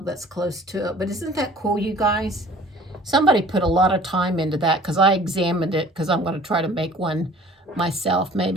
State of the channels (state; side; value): normal; both; correlation 0.49